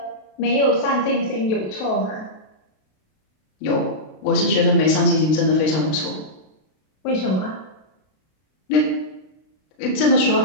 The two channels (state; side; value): late; right; 32 ms